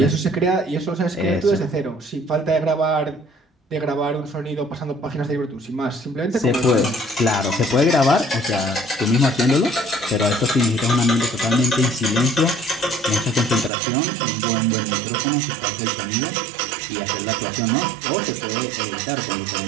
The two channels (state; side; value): drops out; left; at 13.7 s